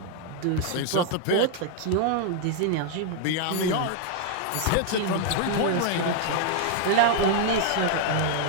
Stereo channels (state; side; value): different; both; correlation 0.00